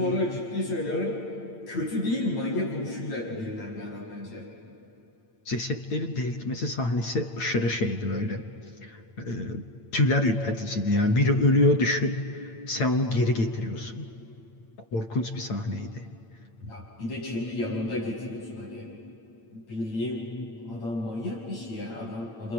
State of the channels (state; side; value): late; right; 8.9 ms